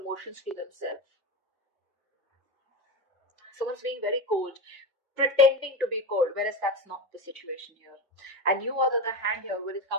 to themselves. Someone's being very cold, pretending to be cold, whereas that's not the situation here. And you, on the other hand, here, when it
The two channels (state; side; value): normal; both; correlation 0.20